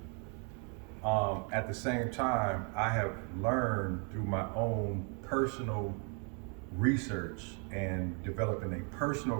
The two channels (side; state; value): left; quieter; 37.9 dB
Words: At the same time, I have learned through my own personal research and developing a personal